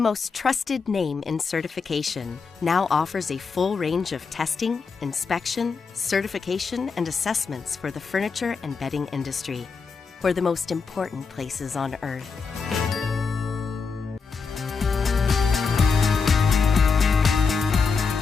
most trusted name in certification now offers a full range of testing, inspection, certification, and assessments for the furniture and bedding industry, for the most important places on earth.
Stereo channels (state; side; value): quieter; right; 5.1 dB